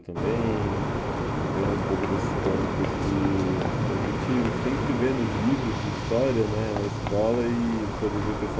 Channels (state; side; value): identical; both; correlation 1.00